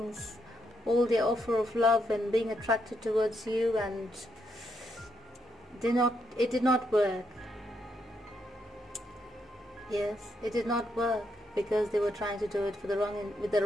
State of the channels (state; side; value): normal; both; correlation 0.78